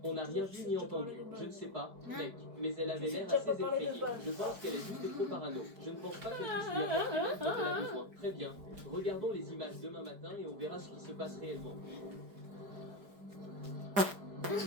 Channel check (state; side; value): late; left; 4.9 ms